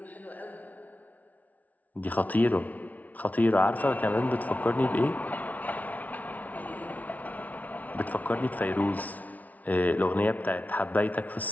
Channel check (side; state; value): right; late; 0.073 ms